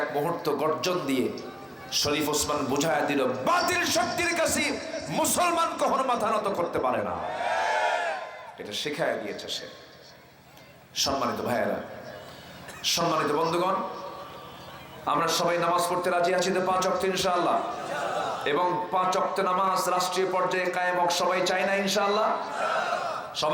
মুহূর্ত গর্জন দিয়ে শরীফ ওসমান বুঝায় দিল, বাতিল শক্তির কাছে মুসলমান কখনো মাথা নত করতে পারে না। এটা শেখায় দিয়েছে সে। সম্মানিত ভাইয়েরা, সম্মানিত বন্ধুগণ, আমরা সবাই নামাজ পড়তে রাজি আছি তো 5 ওয়াক্ত ইনশাআল্লাহ, এবং 5 ওয়াক্ত নামাজ রাষ্ট্রীয় পর্যায়ে কায়েম হোক সবাই চাই না ইনশাআল্লাহ?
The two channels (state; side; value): identical; both; correlation 1.00